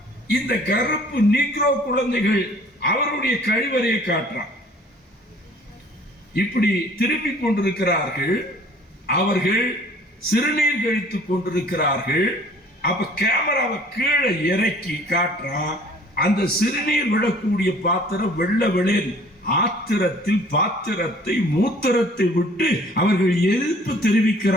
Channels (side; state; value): both; normal; correlation 0.53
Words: இந்த கருப்பு நீக்ரோ குழந்தைகள் அவருடைய கழிவறையை காட்டுறான். இப்படி திரும்பி கொண்டிருக்கிறார்கள், அவர்கள் சிறுநீர் கழித்துக் கொண்டிருக்கிறார்கள். அப்ப கேமராவை கீழே இறக்கி காட்டுறான். அந்த சிறுநீர் விடக்கூடிய பாத்திரம் வெள்ள வெளியில் ஆத்திரத்தில் பாத்திரத்தை மூத்திரத்தை விட்டு அவர்கள் எதிர்ப்பு